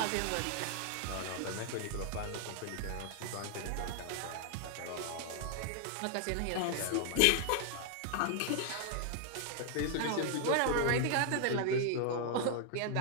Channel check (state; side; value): different; both; correlation 0.00